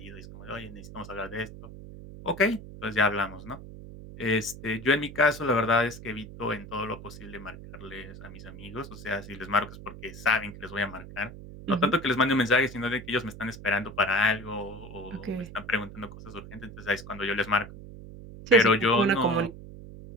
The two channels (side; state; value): right; noise; hum, 14 dB below the sound